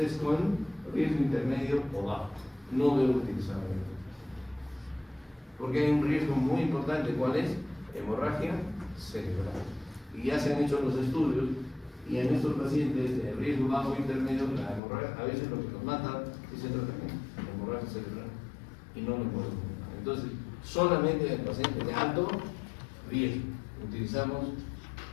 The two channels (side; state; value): right; drops out; at 14.8 s